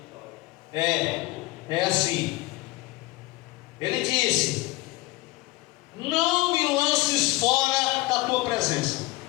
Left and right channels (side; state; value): right; quieter; 20.6 dB